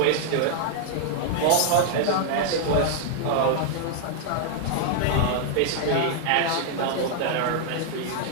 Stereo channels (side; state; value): both; different; correlation -0.01